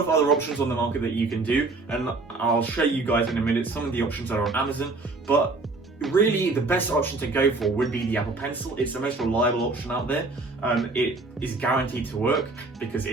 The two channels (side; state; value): left; quieter; 3.5 dB